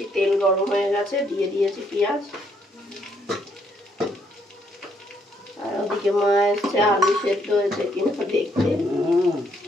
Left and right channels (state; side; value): normal; both; correlation 0.71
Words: তেল গরম হয়ে গেছে, দিয়ে দিয়েছি পেঁয়াজ। আর ওদিকে মা এসছে, আলু সেদ্ধ হয়েছে কিনা দেখতে।